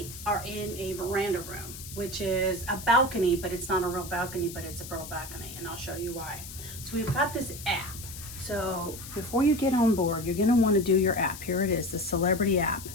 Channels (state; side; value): noise; left; hiss, 12 dB below the sound